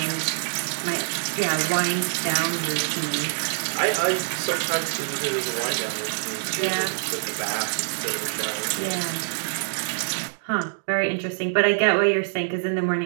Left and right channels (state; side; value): silent; left; digital silence